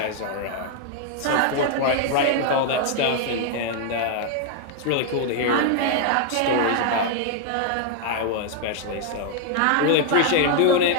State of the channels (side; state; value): both; different; correlation 0.00